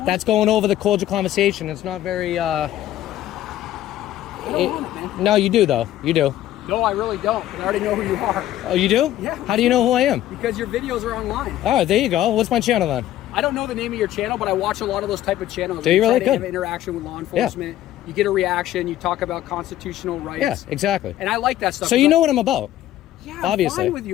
that's going over the cordial conversation. It's not very... I don't want it, man. No, you do, though. You do. No, I really don't. I already know who you are. Oh, you do? Yeah. How do you know who I am? Because your videos are online. All right, there you go. What's my channel then? I don't know the name of your channel, but I watch a lot of those type of channels. Do you really? Good. Have interaction with law enforcement. Yeah. You get a reaction. You talk about constitutional rights. Yeah, exactly. And I like that stuff. So you know what I'm about. Yeah, obviously. I'm fine with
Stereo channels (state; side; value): quieter; right; 13.3 dB